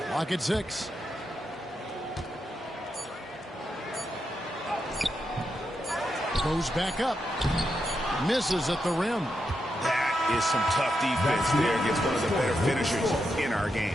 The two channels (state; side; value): normal; both; correlation 0.84